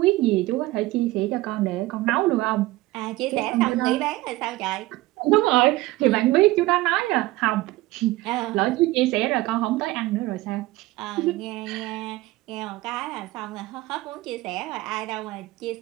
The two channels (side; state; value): left; quieter; 18.9 dB